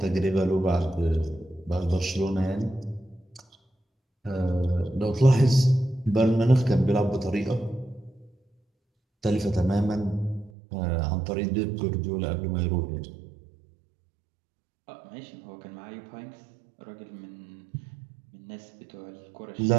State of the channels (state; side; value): drops out; left; at 10.5 s